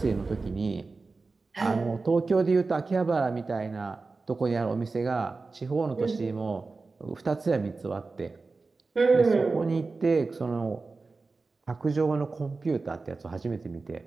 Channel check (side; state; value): left; quieter; 3.9 dB